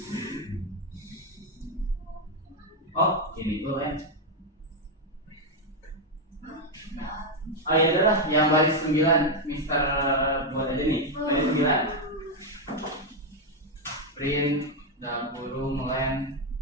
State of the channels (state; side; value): normal; both; correlation 0.03